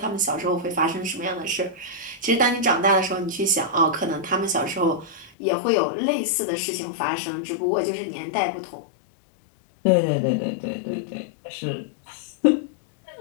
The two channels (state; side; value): drops out; right; at 5.3 s